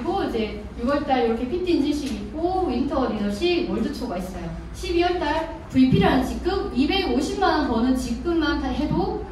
이제 6월달 이렇게 PT 인증식 있고 윈터 리더십 월드투어가 있어요. 12월달 VP라는 직급 250만 원 버는 직급만 다 해도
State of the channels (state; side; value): identical; both; correlation 1.00